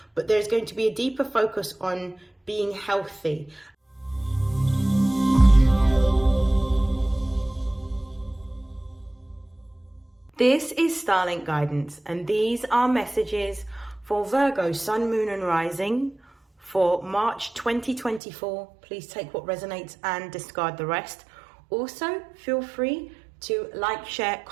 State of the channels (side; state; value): left; drops out; at 18.2 s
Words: but there's going to be a deeper focus on being healthy. This is StarLink guidance, and these are messages for Virgo, Sun, Moon and Rising for March 2024. Please take what resonates and discard the rest. Also, feel free to like, share,